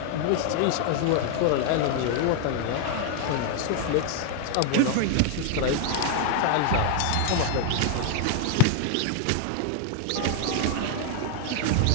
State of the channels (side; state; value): both; different; correlation 0.01